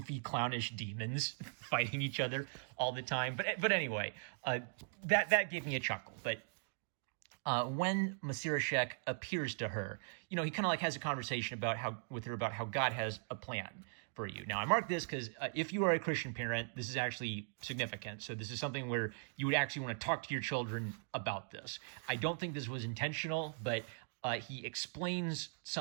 clownish demons fighting each other all the time. But anyway, that gave me a chuckle. But when Masirashek appears to her, he kind of like has a conversation with her about how God has a plan for you. Now, I mark this because if you are a Christian parent, this is actually significant. So this is something where you would actually want to talk to your children about this. I don't think this was intentional, but he explains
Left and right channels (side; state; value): left; silent; digital silence